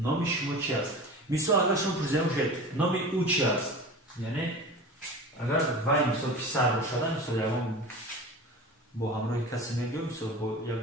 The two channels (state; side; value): normal; both; correlation 0.34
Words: شما چی است مثل اگر شما پرسیده باشید نام او چی است یعنی اگر وای مثل پسر باشد مثل یکم با همراه کسی میگه مثل با